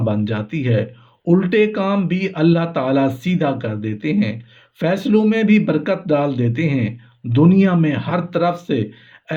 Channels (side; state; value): both; identical; correlation 1.00